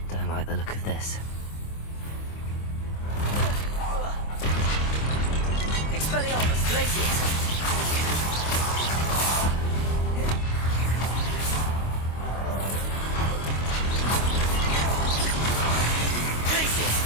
Like the look of this. Expelliarmus, Glacius! Glacius!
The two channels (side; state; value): right; late; 25 ms